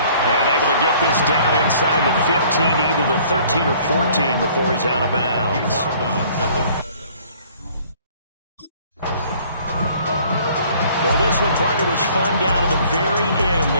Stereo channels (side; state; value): both; inverted; correlation -0.56